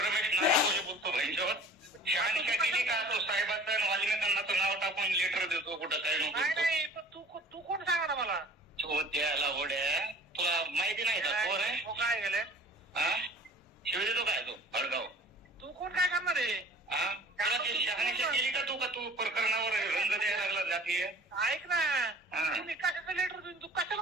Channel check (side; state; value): both; normal; correlation 0.47